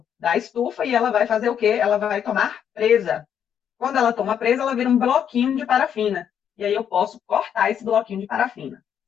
da estufa e ela vai fazer o quê? Ela vai tomar presa. Quando ela toma presa, ela vira um bloquinho de parafina. E aí eu posso cortar esse bloquinho de parafina,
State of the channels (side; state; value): right; quieter; 8.7 dB